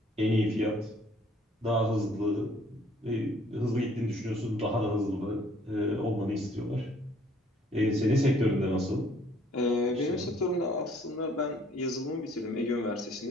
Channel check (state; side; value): normal; both; correlation 0.60